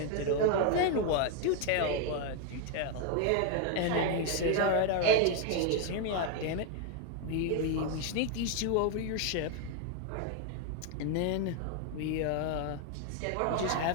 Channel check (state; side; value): different; both; correlation 0.01